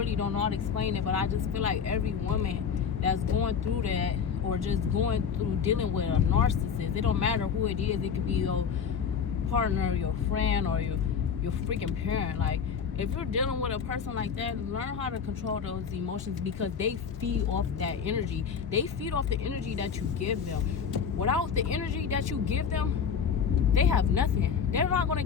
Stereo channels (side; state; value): right; quieter; 6.7 dB